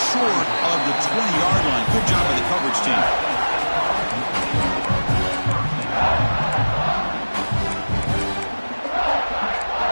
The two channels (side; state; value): both; inverted; correlation -1.00